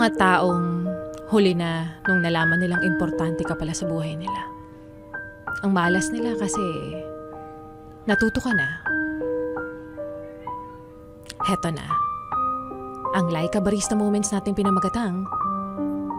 mga taong huli na nung nalaman nilang importante ka pala sa buhay nila. Ang malas nila kasi natuto ka na. Heto na. Ang Laika Barista Moments natin pinamagatang,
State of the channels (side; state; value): both; identical; correlation 1.00